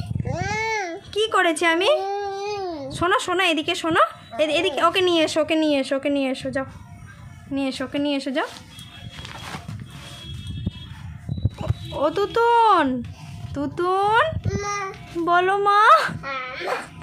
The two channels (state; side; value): identical; both; correlation 1.00